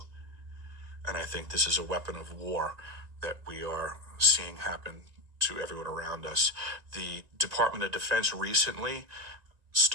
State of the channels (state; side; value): late; left; 1.9 ms